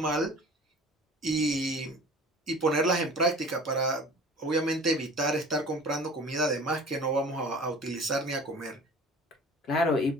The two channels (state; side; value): normal; both; correlation 0.43